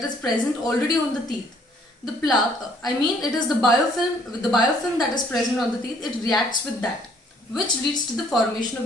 is present already on the teeth. The plaque, it is the biofilm that is present on the teeth, it reacts with that, which leads to the formation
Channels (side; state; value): both; normal; correlation 0.62